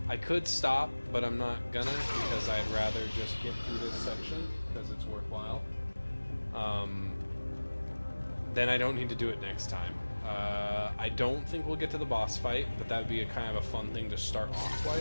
I could stop, but I'm not gonna, because I'd rather just get through this section, because it's worthwhile. Then I don't need to do it next time. I don't think we'll get to the boss fight, but that would be a kind of a fun thing to start off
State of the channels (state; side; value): inverted; both; correlation -1.00